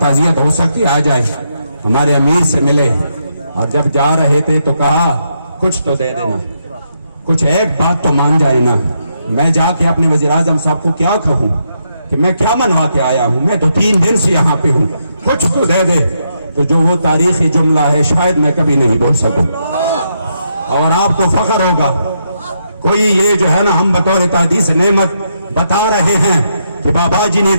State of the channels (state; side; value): inverted; both; correlation -0.80